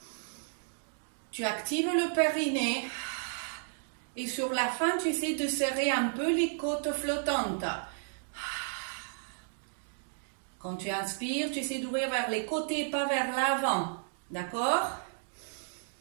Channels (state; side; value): silent; left; digital silence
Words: Tu actives le périnée. Et sur la fin, tu essaies de serrer un peu les côtes flottantes. Quand tu inspires, tu essaies d'ouvrir vers les côtés, pas vers l'avant. D'accord?